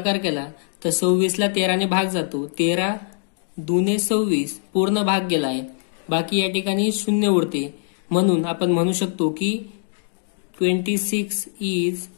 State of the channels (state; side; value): silent; right; digital silence